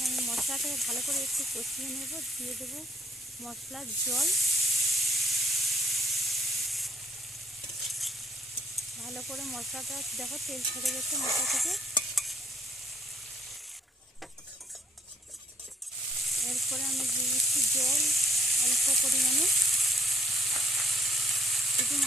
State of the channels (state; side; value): normal; both; correlation 0.68